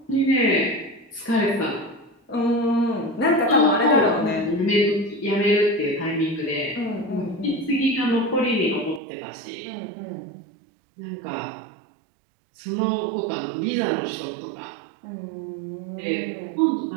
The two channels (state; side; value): drops out; left; at 9.0 s